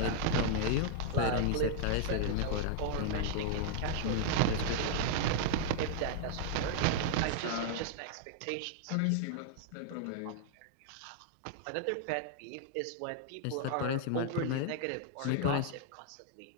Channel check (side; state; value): both; different; correlation -0.01